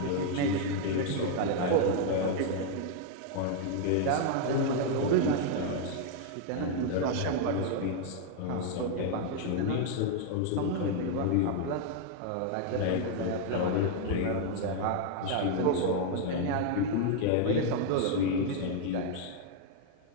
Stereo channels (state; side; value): different; both; correlation 0.00